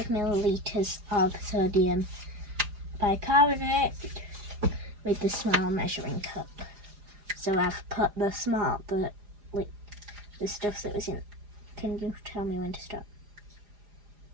milliliters of sodium bicarbonate with the small measuring cup. So I've put the stuff that was in. Can you tell me when to stop?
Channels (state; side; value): late; left; 4.9 ms